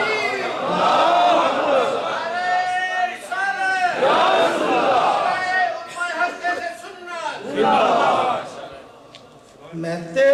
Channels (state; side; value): identical; both; correlation 1.00